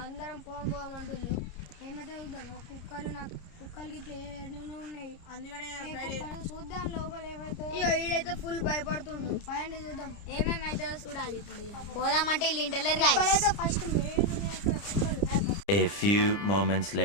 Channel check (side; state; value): right; late; 29 ms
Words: అందరం పోవం అంటుళ్ళు. ఏమైతే చూద్దాం, కుక్కలకి ఇట్లా ఎన్నో ఉన్నాయి, అందుకనే చూద్దాం లోపల ఏమైతే. ఈడైతే ఫుల్ భయపడుతుండు. పదండి చూద్దాం ఏమేమైతే చూడాలి. ఇప్పుడు పోదామంటే వీళ్ళు ఇంటలేరు కుక్కలైతే ఫస్ట్ మెయిన్ ఉన్నాయి అక్కడ కుక్కలు. A few moments